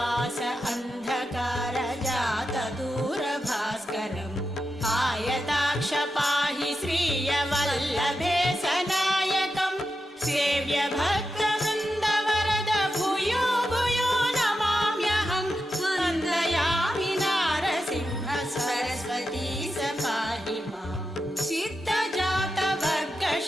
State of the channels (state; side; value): normal; both; correlation 0.88